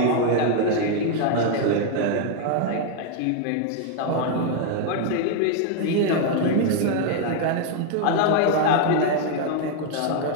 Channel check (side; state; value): both; different; correlation 0.00